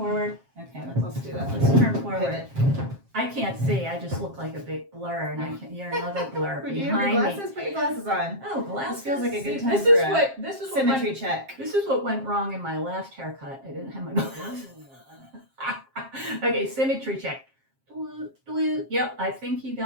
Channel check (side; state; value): left; late; 7.5 ms